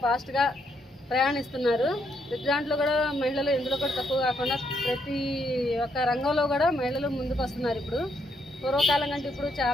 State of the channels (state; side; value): normal; both; correlation 0.75